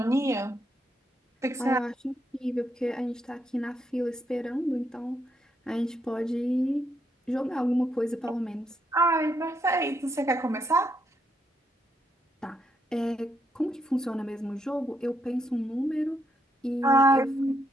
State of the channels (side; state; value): both; normal; correlation 0.77